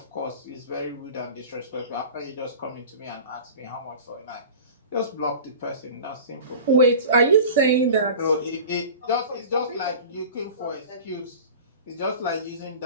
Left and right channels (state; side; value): inverted; both; correlation -0.38